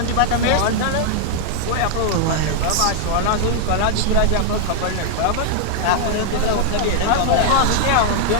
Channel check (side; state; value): both; different; correlation 0.00